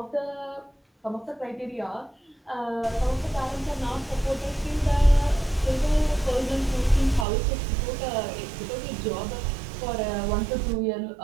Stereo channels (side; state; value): left; drops out; at 7.2 s